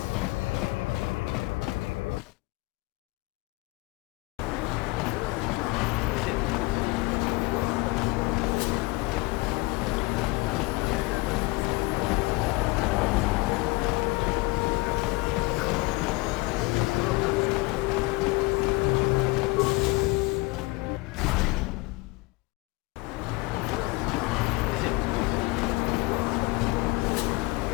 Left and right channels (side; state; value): right; quieter; 23.9 dB